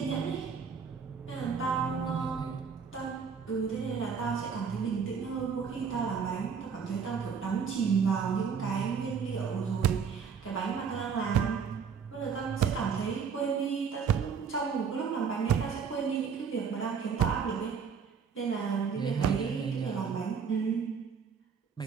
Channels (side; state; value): left; quieter; 6.4 dB